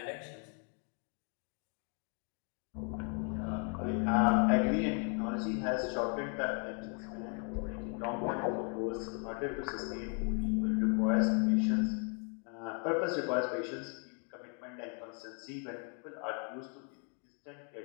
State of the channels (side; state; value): right; quieter; 39.3 dB